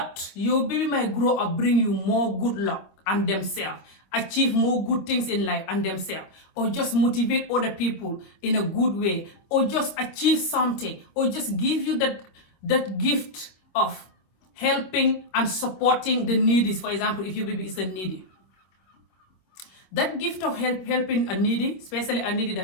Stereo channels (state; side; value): late; right; 25 ms